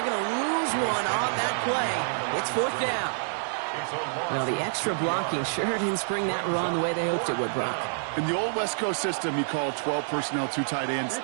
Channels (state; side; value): silent; left; digital silence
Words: going to lose one on that play. It's fourth down. Well, the extra blocking sure didn't spring that run the way they hoped it would, Brock. In the old West Coast system, you called 12 personnel, 2 tight ends,